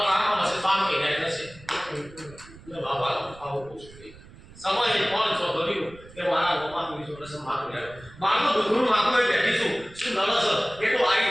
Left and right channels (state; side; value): noise; right; rumble, 20 dB below the sound